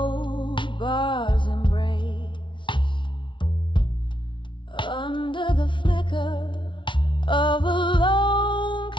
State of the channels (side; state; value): right; late; 0.24 ms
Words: bar's embrace, under the flicker of a lone